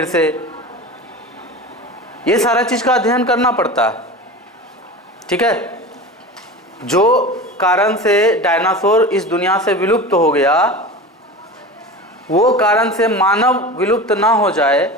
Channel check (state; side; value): normal; both; correlation 0.31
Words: से। ये सारा चीज का अध्ययन करना पड़ता है। ठीक है, जो कारण से डायनासोर इस दुनिया से विलुप्त हो गया, वो कारण से मानव विलुप्त ना हो